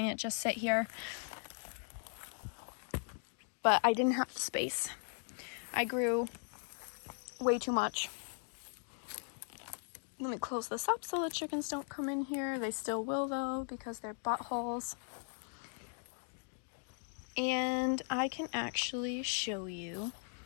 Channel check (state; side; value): silent; right; 52 dB below the other